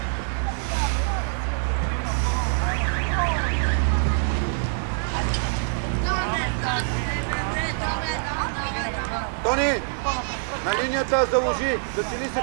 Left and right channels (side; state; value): left; silent; digital silence